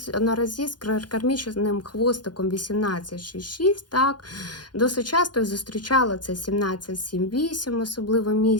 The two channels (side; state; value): right; late; 0.70 ms